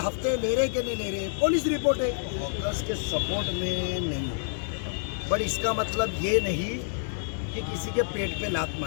ले रहे कि नहीं ले रहे, पुलिस रिपोर्ट है, हॉकर्स के सपोर्ट में नहीं। बट इसका मतलब ये नहीं कि किसी के पेट पे लात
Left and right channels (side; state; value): right; silent; 59 dB below the other